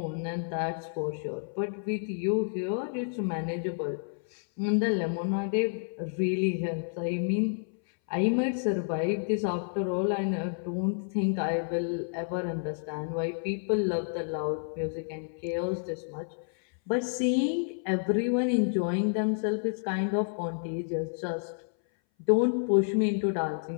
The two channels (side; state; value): right; silent; 58 dB below the other